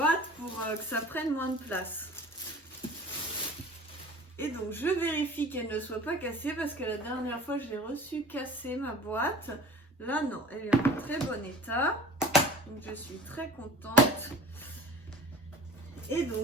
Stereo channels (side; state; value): both; normal; correlation 0.41